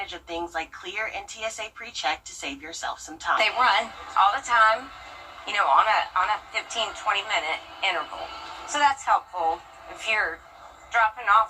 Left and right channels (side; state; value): both; identical; correlation 1.00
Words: of things like Clear and TSA PreCheck to save yourself some time. They run all the time, you know, on a 15-20 minute interval. So that's helpful if you're dropping